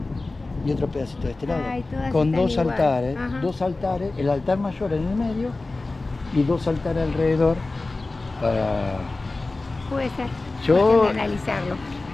y otro pedacito de este lado. Ay, con dos igual. altares, el altar mayor en el medio y dos altares alrededor para... Puede ser. Yo analizarlo.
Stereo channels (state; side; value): quieter; right; 3.3 dB